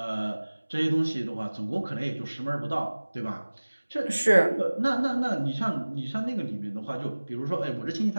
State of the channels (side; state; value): both; inverted; correlation -1.00